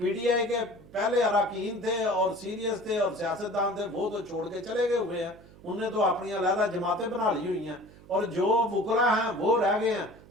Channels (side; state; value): right; noise; hum, 22 dB below the sound